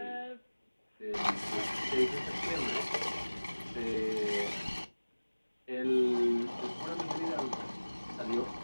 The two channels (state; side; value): inverted; both; correlation -1.00